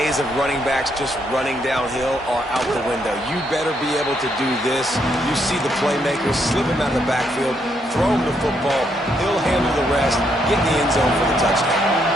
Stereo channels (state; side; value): normal; both; correlation 0.75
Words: of running backs just running downhill are out the window. You better be able to do this. You see the playmakers slip him out of the backfield, throw him the football, he'll handle the rest, get in the end zone for the touchdown.